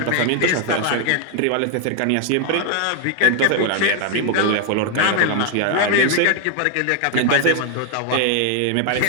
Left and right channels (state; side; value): different; both; correlation 0.00